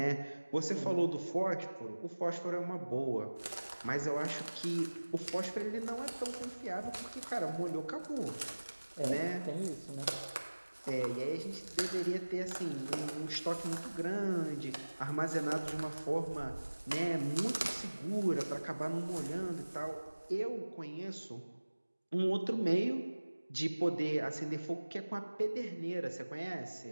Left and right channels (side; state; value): both; inverted; correlation -1.00